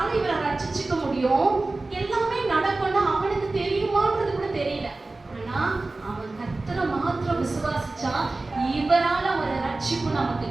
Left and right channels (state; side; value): quieter; left; 3.2 dB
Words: இவரை ரட்சிச்சுக்க முடியும், எல்லாமே நடக்கும்னு அவனுக்கு தெரியுமான்றது கூட தெரியல. ஆனா அவன் கர்த்தரை மாத்திரம் விசுவாசிச்சா இவரால ஒரு ரட்சிப்பு நமக்கு